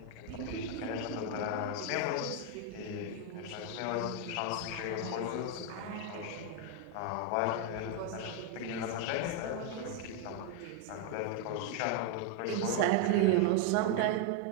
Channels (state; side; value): different; both; correlation 0.01